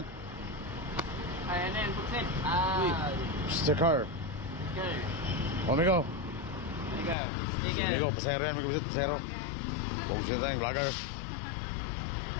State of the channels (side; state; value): right; drops out; at 7.2 s